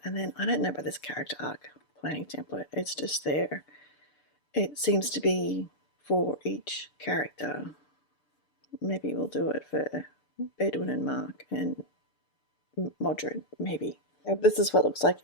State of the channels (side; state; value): right; late; 6.8 ms